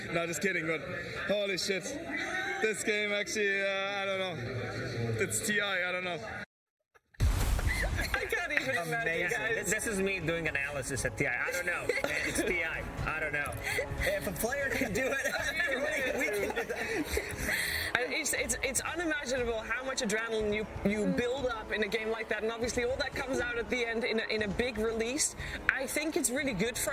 No, just kidding, but holy shit. This game actually, I don't know. It's TI, I don't know. I can't even imagine, guys. This is me doing analysis at TI. I don't know. It's TI. I don't know. If a player can do it, we can do that. It's unimaginable how much adrenaline you build up in a game like that, and obviously all that comes out at the end in a big release. I think it's really good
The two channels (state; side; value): identical; both; correlation 1.00